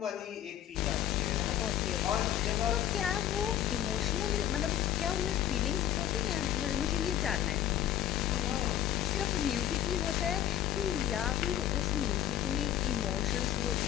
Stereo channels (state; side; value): quieter; right; 11.5 dB